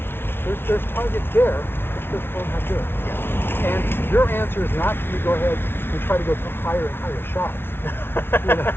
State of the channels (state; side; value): late; right; 0.11 ms